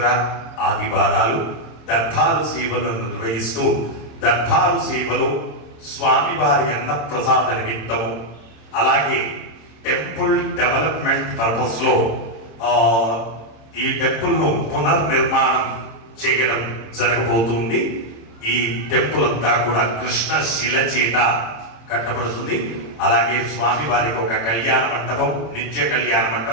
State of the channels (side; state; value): right; late; 26 ms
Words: ఆదివారాలు దర్బారు సేవలను నిర్వహిస్తూ దర్బారు సేవలో స్వామివారి అన్నప్రసాద నిమిత్తము అలాగే టెంపుల్ డెవలప్మెంట్ పర్పస్ లో ఈ టెంపుల్ ను పునర్నిర్మాణం చేయడం జరగబోతుంది. ఈ టెంపుల్ అంతా కూడా కృష్ణ శిల చేత కట్టబడుతుంది. అలాగే స్వామివారికి ఒక కళ్యాణ మంటపం, నిత్య కళ్యాణ